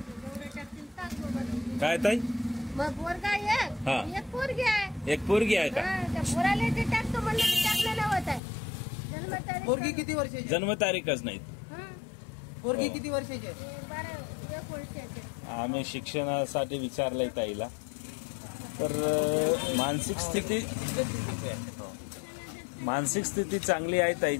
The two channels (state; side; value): drops out; right; at 8.4 s